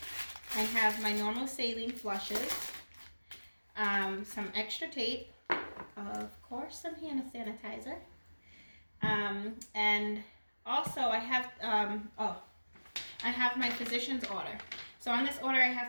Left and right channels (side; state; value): both; inverted; correlation -1.00